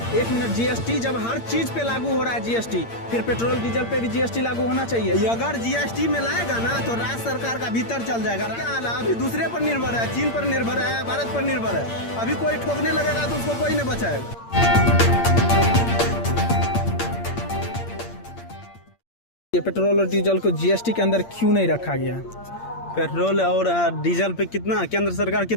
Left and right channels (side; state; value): right; late; 8.7 ms